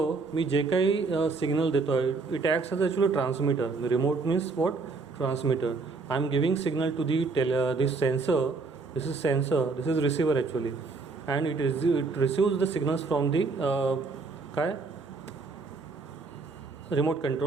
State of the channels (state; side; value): quieter; left; 4.1 dB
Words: मी जे काही सिग्नल देतो आहे it acts as actually transmitter. Remote means what? Transmitter. I am giving signal to the this sensor. This is sensor, this is receiver actually, and it receives the signals from the remote